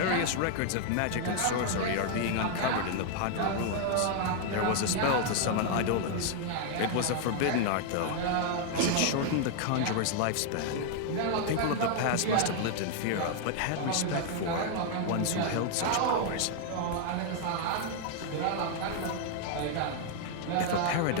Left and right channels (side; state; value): both; different; correlation 0.00